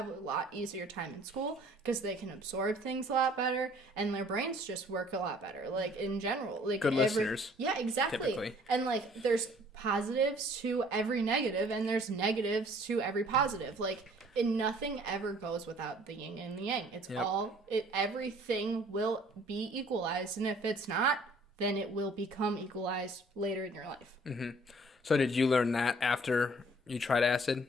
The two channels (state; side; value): normal; both; correlation 0.56